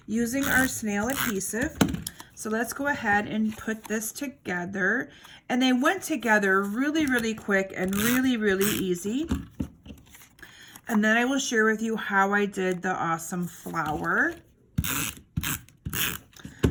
using our snail adhesive. So let's go ahead and put this together. And they went together really, really quick and really, really easy. And then I will share with you how I did the awesome flower.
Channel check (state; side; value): identical; both; correlation 1.00